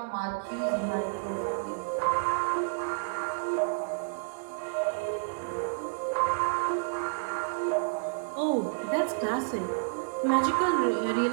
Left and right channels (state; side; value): silent; left; digital silence